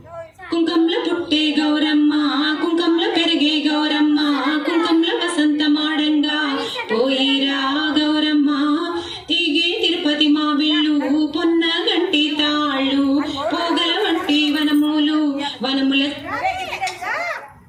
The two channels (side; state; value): both; identical; correlation 1.00